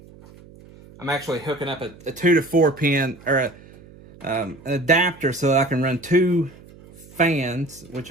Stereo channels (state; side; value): noise; right; hum, 22 dB below the sound